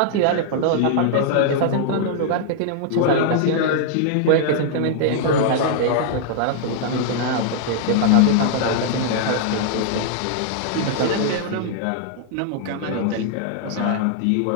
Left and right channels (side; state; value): both; different; correlation -0.01